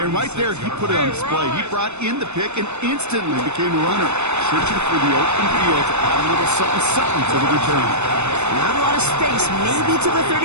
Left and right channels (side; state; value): left; late; 0.82 ms